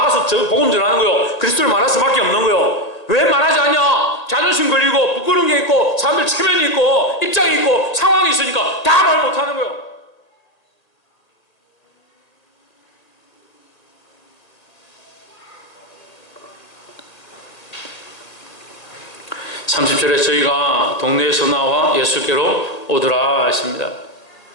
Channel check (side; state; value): right; late; 1.8 ms